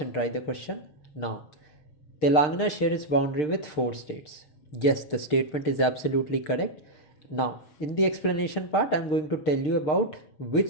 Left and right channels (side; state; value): right; late; 6.6 ms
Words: try the question. Now Telangana shares its boundary with 4 states. Yes, the statement is absolutely correct. Now, in the explanation part, I'm going to tell you about